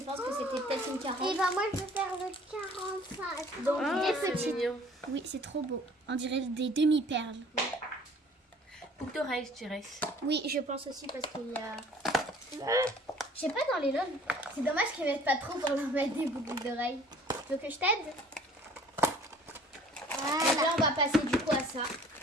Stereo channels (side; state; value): both; normal; correlation 0.52